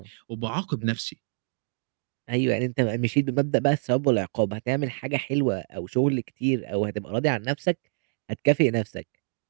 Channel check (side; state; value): left; silent; digital silence